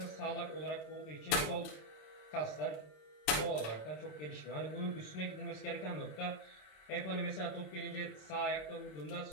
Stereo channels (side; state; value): right; late; 27 ms